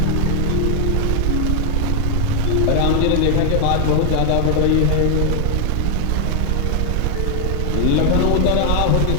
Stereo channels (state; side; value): different; both; correlation 0.00